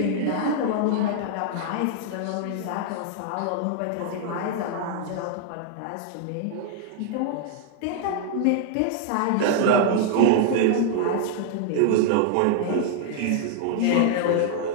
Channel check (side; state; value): both; different; correlation 0.00